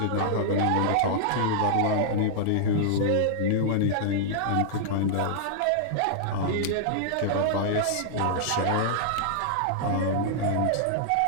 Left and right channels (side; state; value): both; different; correlation -0.01